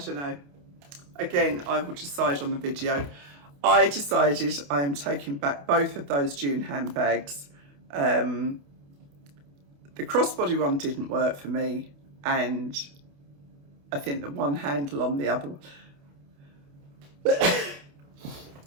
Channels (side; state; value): left; late; 28 ms